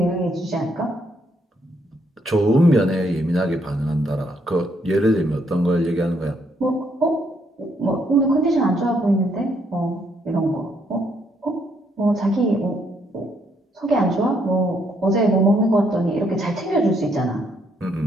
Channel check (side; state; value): both; normal; correlation 0.72